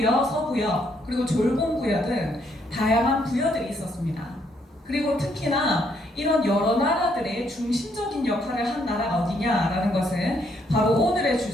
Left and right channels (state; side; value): normal; both; correlation 0.72